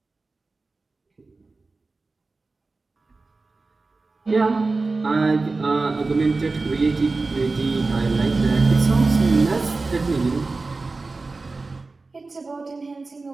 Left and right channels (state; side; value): quieter; left; 3.7 dB